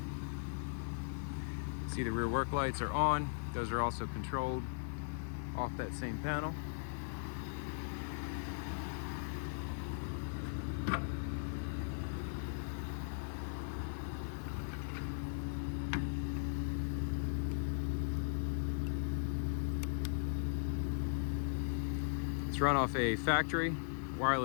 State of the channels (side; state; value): right; silent; digital silence